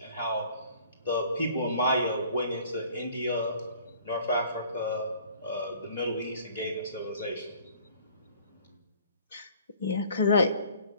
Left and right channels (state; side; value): inverted; both; correlation -0.53